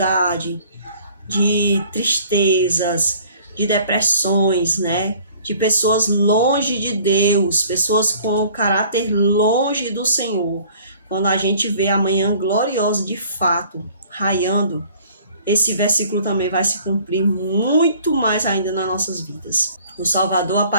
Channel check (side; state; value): both; inverted; correlation -0.54